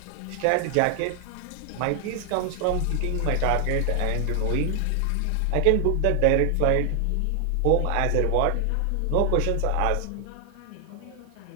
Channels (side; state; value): both; different; correlation 0.00